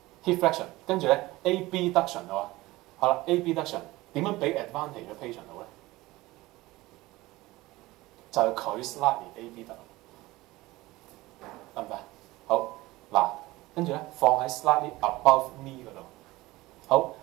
？hip flexion， 跟住咧 AB duction 喎。好啦 ，AB duction 點樣俾 advantage 嘅 patient 好咧？就係佢 slightly AB 得唔得？好嗱，跟住咧放喺 slightly above knee 嗰度。好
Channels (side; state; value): left; quieter; 19.3 dB